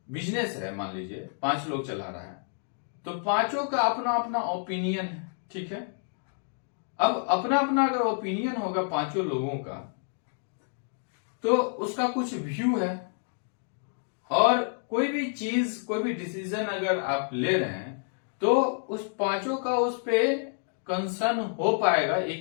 बिजनेस है, मान लीजिए 5 लोग चला रहा है, तो पांचों का अपना अपना ओपिनियन है। ठीक है, अब अपना अपना अगर ओपिनियन होगा पांचों लोगों का, तो उसका कुछ व्यू है, और कोई भी चीज, कोई भी डिसीजन अगर आप ले रहे हैं तो उस पांचों का उस पे कंसर्न हो पाएगा,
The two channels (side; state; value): right; silent; 59 dB below the other